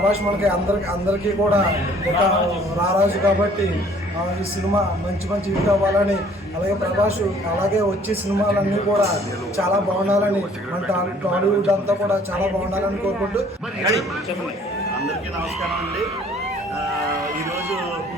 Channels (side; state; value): both; normal; correlation 0.57